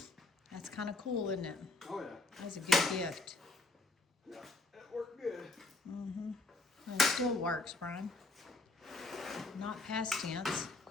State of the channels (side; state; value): right; quieter; 3.1 dB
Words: That's kind of cool, isn't it? Oh yeah. That's a good gift. Yeah. That worked good. And it still works, Brian. Not past tense.